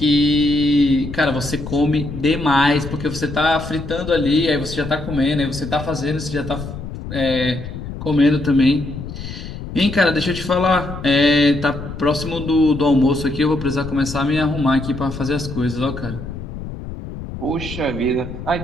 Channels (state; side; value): noise; left; rumble, 9 dB below the sound